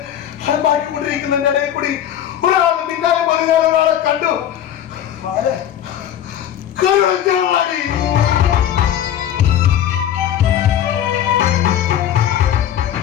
അലമ്പാക്കിക്കൊണ്ടിരിക്കുന്നതിന്റെ ഇടയിൽ കൂടി ഒരാൾ പിന്നാലെ പറഞ്ഞാൽ ഒരാളെ കണ്ടു. കരുണാടി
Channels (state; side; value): quieter; right; 10.6 dB